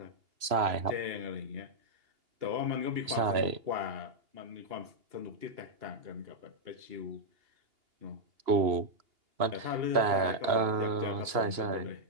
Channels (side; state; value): left; late; 3.0 ms